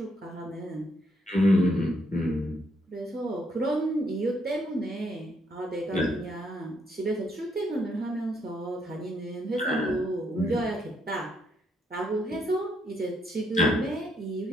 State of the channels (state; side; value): normal; both; correlation 0.73